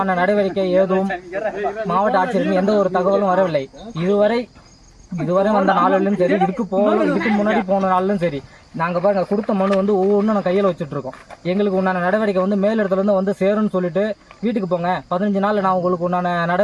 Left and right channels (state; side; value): identical; both; correlation 1.00